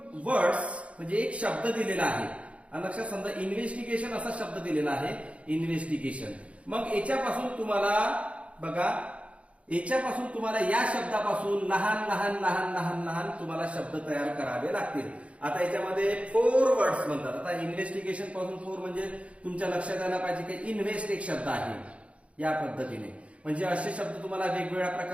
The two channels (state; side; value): late; left; 0.063 ms